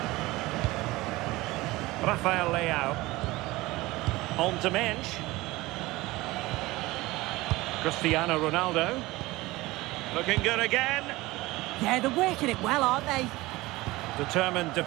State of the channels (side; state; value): left; quieter; 19.9 dB